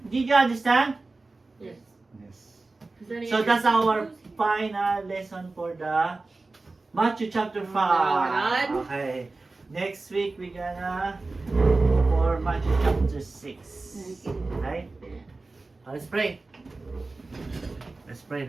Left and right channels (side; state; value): left; quieter; 3.5 dB